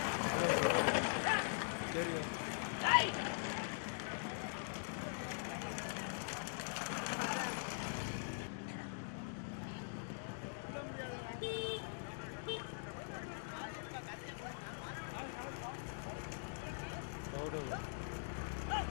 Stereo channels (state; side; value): silent; right; digital silence